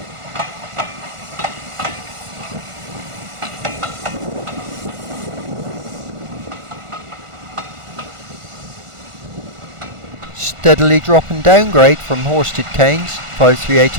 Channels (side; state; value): left; late; 1.4 ms